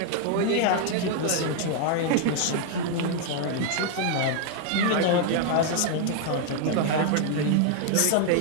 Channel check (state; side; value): different; both; correlation 0.00